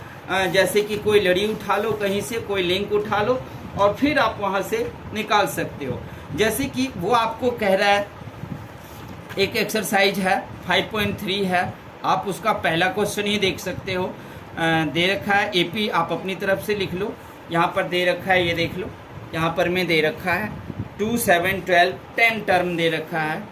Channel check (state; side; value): identical; both; correlation 1.00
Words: जैसे कि कोई लड़ी उठा लो, कहीं से कोई लिंक उठा लो और फिर आप वहाँ से निकाल सकते हो। जैसे कि वो आपको कह रहा है, एक एक्सरसाइज है 5.3 है, आप उसका पहला क्वेश्चन ही देख सकते हो। दे रखा है AP, आप अपनी तरफ से लिख लो। यहाँ पर दे रखा है, ये देख लो, यहाँ पर में दे रखा है 2, 7, 12 10 टर्म दे रखा है,